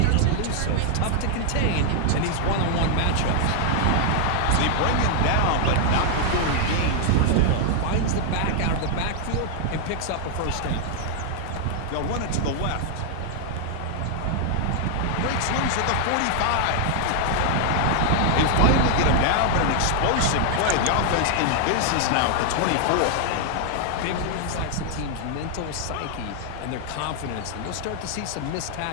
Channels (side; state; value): both; different; correlation 0.00